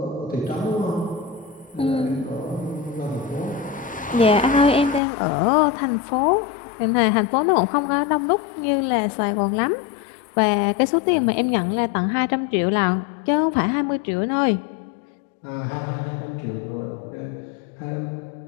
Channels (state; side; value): drops out; right; at 5.0 s